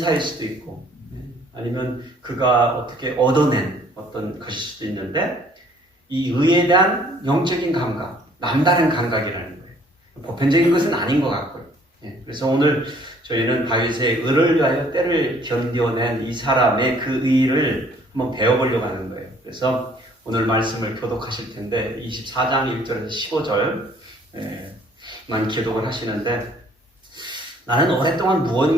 수도 있고 아니면 그가 어떻게 얻어낸 어떤 것일 수도 있는데, 이 의에 대한 영적인 감각, 남다른 감각이라는 거예요. 보편적인 것은 아닌 것 같고요. 그래서 오늘 저희는 다윗의 의를 위하여 때를 견뎌낸 이 사람의 그 의를 한번 배워보려고 하는 거예요. 그래서 오늘 말씀을 교독하실 텐데 24장 1절에서 15절만 교독을 하시는데, 나는 오랫동안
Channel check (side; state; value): both; normal; correlation 0.59